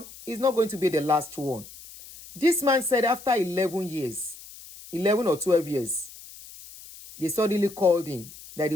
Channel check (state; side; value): noise; left; hiss, 18 dB below the sound